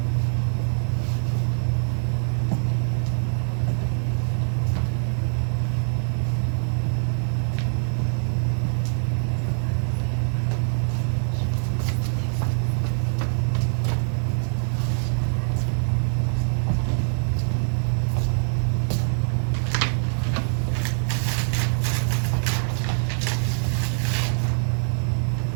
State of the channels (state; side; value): silent; left; 57 dB below the other